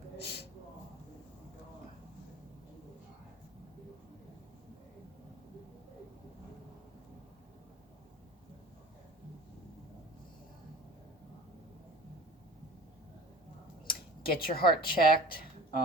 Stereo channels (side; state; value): both; normal; correlation 0.41